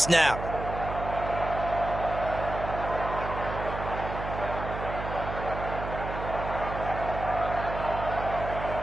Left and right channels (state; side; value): noise; right; hum, 7 dB below the sound